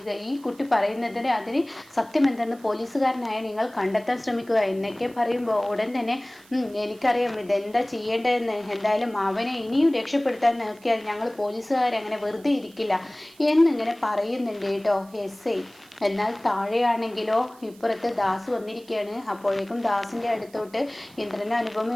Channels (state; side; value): noise; right; hiss, 26 dB below the sound